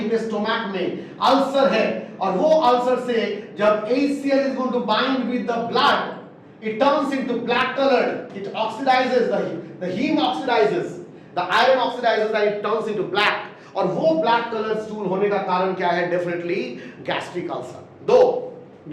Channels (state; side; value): identical; both; correlation 1.00